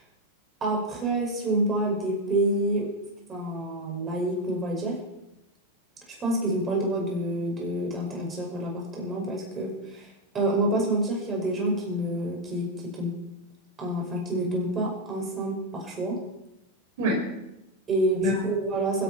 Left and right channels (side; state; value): both; normal; correlation 0.07